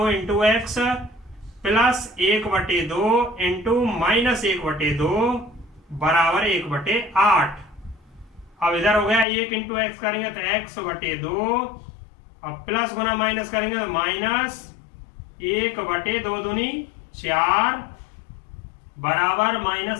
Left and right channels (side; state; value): right; drops out; at 9.2 s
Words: into x plus 1/2 into minus 1/2 बराबर 1/8। अब इधर हो गया 1 इंटू एक्स करेंगे तो x/2, अब प्लस गुना माइनस करेंगे तो माइनस 1/2 दूनी 4 बराबर